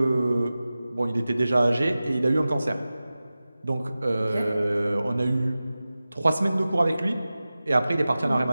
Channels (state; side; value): inverted; both; correlation -0.96